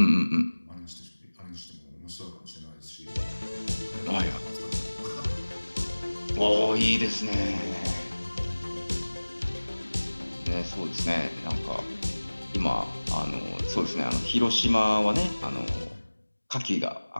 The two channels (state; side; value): inverted; both; correlation -1.00